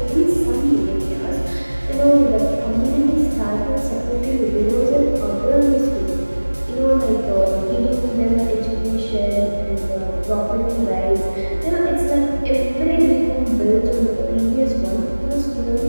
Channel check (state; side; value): inverted; both; correlation -1.00